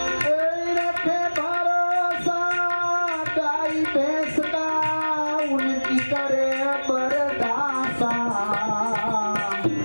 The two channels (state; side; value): inverted; both; correlation -1.00